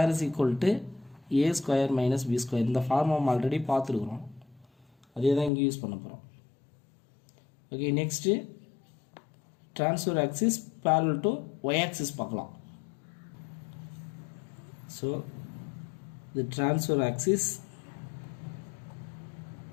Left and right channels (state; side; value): drops out; right; at 5.5 s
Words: - b². இந்த ஃபார்முலா நம்ம ஆல்ரெடி பார்த்துருக்குறோம். அதே தான் இங்கே யூஸ் பண்ண போகிறோம். Okay, next transfer axis parallel to y axis பார்க்கலாம். So the transfer axis